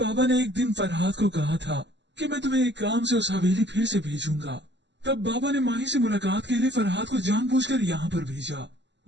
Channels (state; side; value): late; left; 0.52 ms